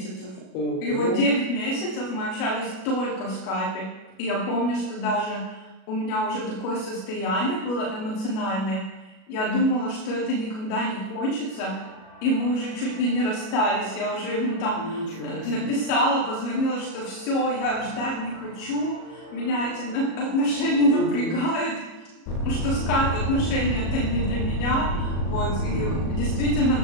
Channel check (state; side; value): late; right; 37 ms